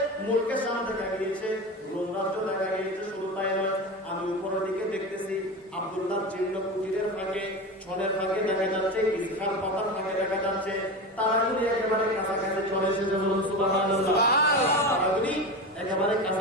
মুলকের সামনে দেখা গিয়েছে, রোম রাজ্য দেখা গিয়েছে। শুধু তাই নয়, আমি উপরের দিকে দেখতেছি আব্দুল্লাহ জীর্ণ কুটিরের ফাঁকে, ছনের ফাঁকে দেখা যাচ্ছে, ইসখার পাতার ফাঁকে দেখা যাচ্ছে। তারাগুলি একেবারে কাছাকাছি চলে এসেছে। বলুন সুবহানাল্লাহ। তারাগুলি একেবারে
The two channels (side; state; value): both; normal; correlation 0.24